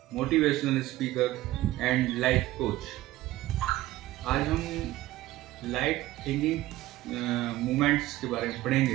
motivational speaker and life coach. आज हम light thinking movements के बारे में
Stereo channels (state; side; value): quieter; left; 16.2 dB